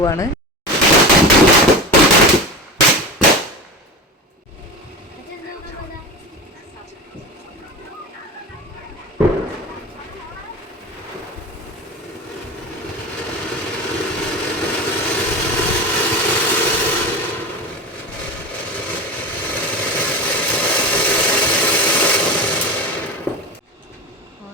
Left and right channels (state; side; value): normal; both; correlation 0.27